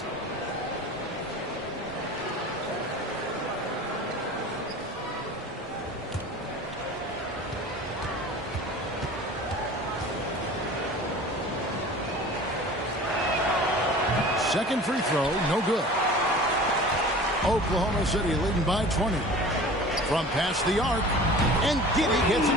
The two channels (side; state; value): both; normal; correlation 0.41